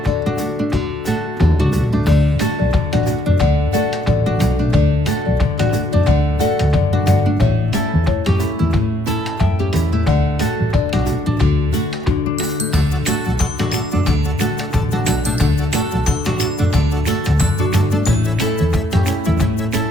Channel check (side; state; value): both; normal; correlation 0.71